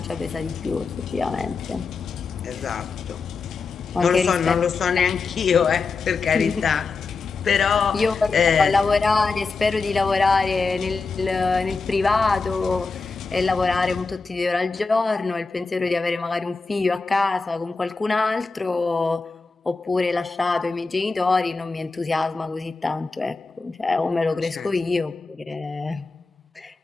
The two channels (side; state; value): right; quieter; 4.3 dB